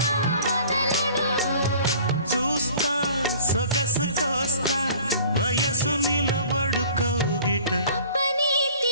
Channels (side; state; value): both; inverted; correlation -0.48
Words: వదలడు చూస్తా సొగసు కోస్తా వయసు నిలబడు కౌగిట అబ్బని